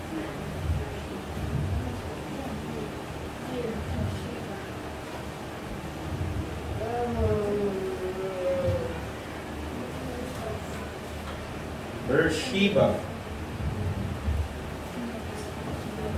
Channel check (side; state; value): both; identical; correlation 1.00